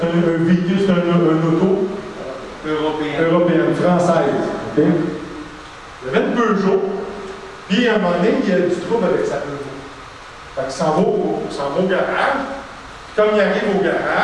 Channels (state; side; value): identical; both; correlation 1.00